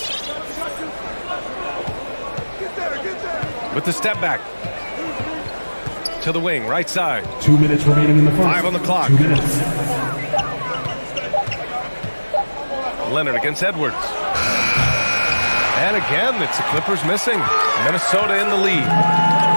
With the step back. To the wing, right side. 2 minutes remaining in the first. 5 on the clock. 2 minutes. Leonard against Edwards. And again, it's the Clippers missing. Minnesota in the lead.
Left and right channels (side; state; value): both; inverted; correlation -1.00